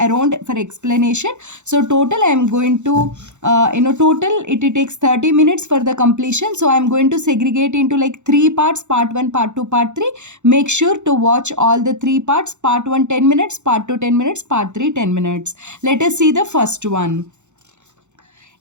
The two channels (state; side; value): late; left; 0.83 ms